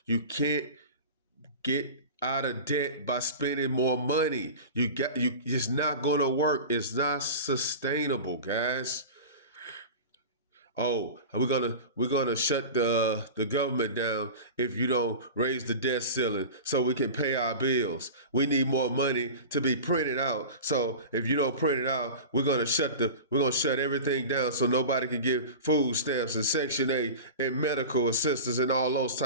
You can't get out of debt by spending more money. It's not gonna work. It's not sustainable, guys. Oh, we're gonna shut the government down if you don't raise the debt ceiling so we can pay our bills. We need more money to be printed out. So if you don't print it out, we're gonna shut everything down so nobody can get food stamps and Section 8 and medical assistance and all those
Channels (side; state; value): both; inverted; correlation -0.32